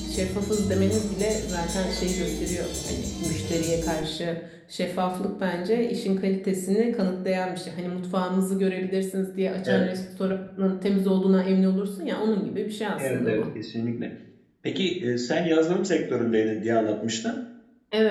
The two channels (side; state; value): both; identical; correlation 1.00